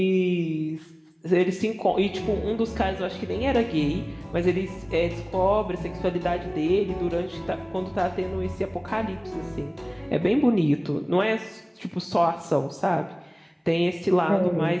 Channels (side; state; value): both; identical; correlation 1.00